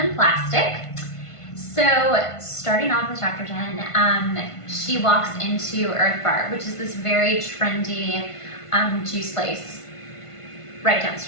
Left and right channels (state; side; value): late; right; 1.5 ms